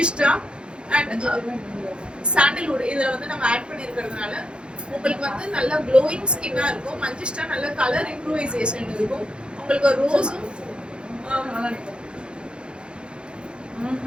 அண்ட் சாண்டல்வுட் இதுல வந்து நம்ம ஆட் பண்ணி இருக்கிறதுனால உங்களுக்கு வந்து நல்ல க்ளோயிங் ஸ்கின்னா இருக்கும். மஞ்சிஷ்டா நல்ல கலர் இம்ப்ரூவைசேஷன் இருக்கும். உங்களுக்கு ரோஸும்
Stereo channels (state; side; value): late; left; 0.054 ms